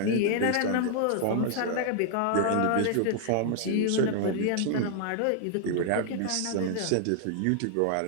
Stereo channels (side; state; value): both; different; correlation 0.00